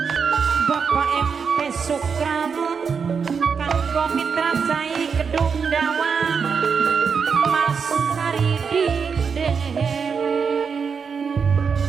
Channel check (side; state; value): left; quieter; 6.0 dB